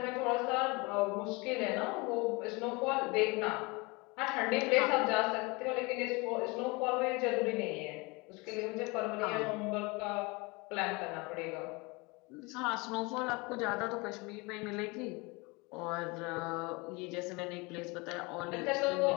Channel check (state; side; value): quieter; right; 26.5 dB